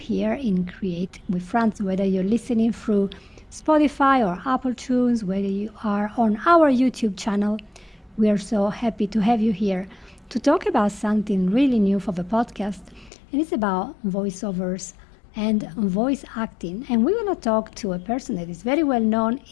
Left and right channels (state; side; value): drops out; right; at 13.1 s